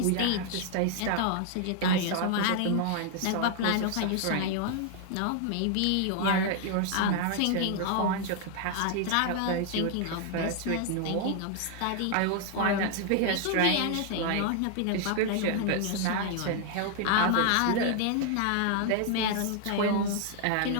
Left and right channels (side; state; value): both; different; correlation 0.00